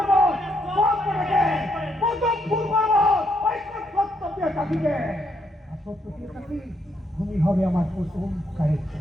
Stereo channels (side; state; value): both; normal; correlation 0.75